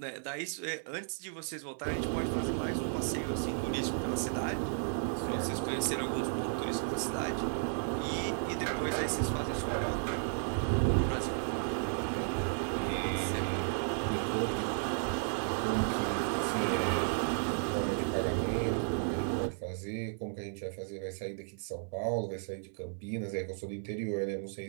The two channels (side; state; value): left; silent; 55 dB below the other